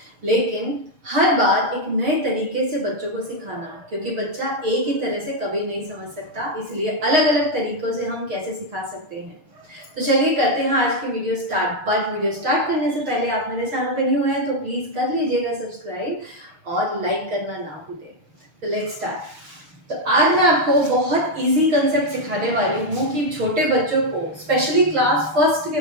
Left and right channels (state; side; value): late; left; 6.4 ms